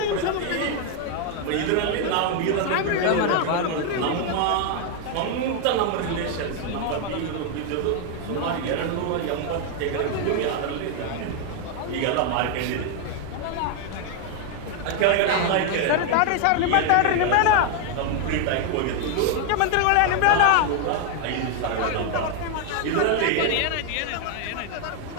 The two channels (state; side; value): different; both; correlation 0.01